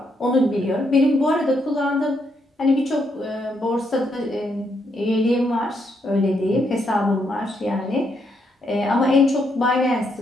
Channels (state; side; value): normal; both; correlation 0.77